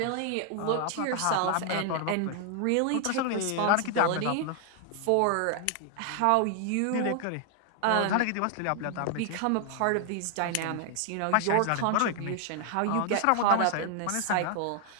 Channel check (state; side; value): different; both; correlation 0.00